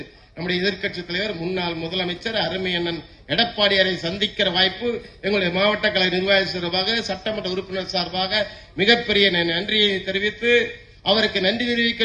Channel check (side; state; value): both; identical; correlation 1.00